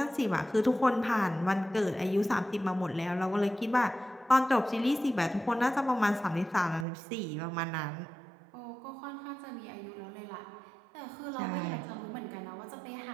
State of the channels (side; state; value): left; drops out; at 6.9 s